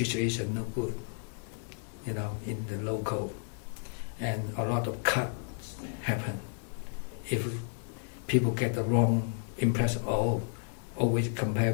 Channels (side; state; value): right; silent; digital silence